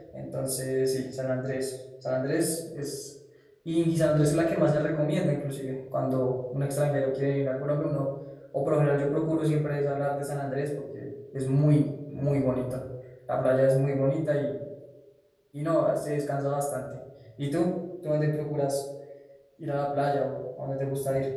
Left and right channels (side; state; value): both; identical; correlation 1.00